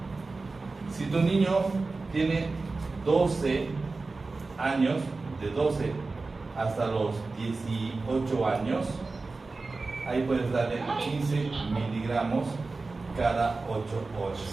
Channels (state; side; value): quieter; left; 3.7 dB